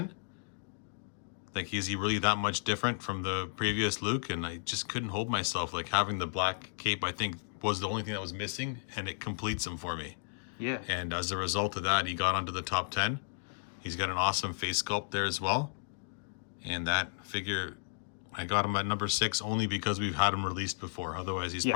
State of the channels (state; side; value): silent; right; digital silence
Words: Like, is he really that much different from the previous Luke? And I just couldn't hold myself. Like, having the black cape, I think, was the only thing that was missing, and it completes him for me. Yeah. And as a result of that, he got onto the top 10. He's got an awesome face sculpt there as well. And that figure, I got him at number 6 only because we've had him released before. Otherwise, he's